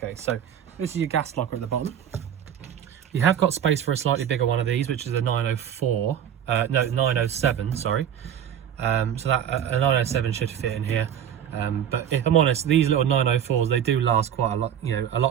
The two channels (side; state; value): left; quieter; 9.3 dB